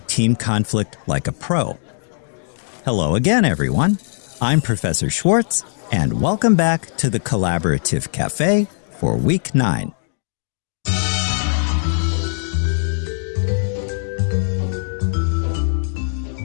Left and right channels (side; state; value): right; silent; digital silence